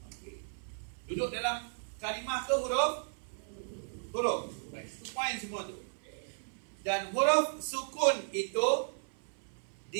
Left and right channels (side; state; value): left; silent; 54 dB below the other